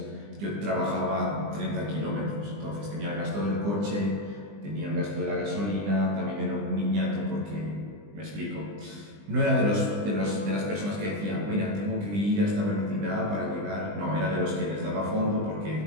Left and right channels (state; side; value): late; left; 20 ms